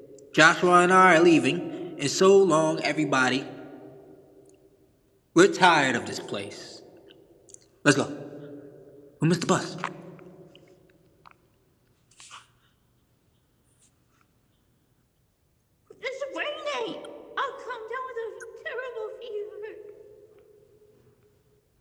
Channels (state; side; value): identical; both; correlation 1.00